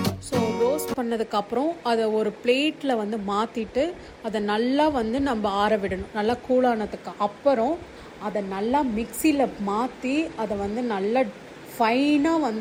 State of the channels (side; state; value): both; identical; correlation 1.00